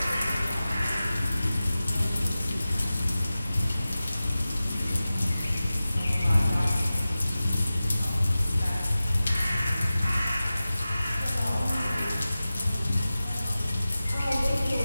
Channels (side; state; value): both; inverted; correlation -0.96